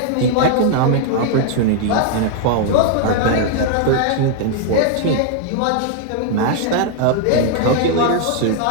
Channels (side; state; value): both; different; correlation 0.00